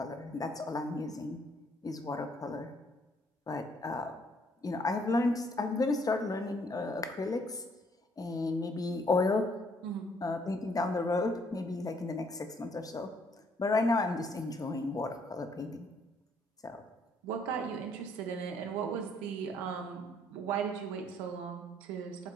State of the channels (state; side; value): normal; both; correlation 0.66